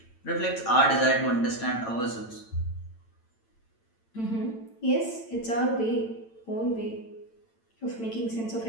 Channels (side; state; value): right; late; 8.9 ms